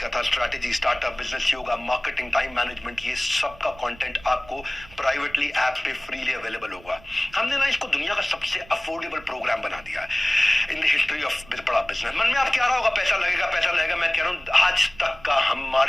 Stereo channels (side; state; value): right; noise; rumble, 22 dB below the sound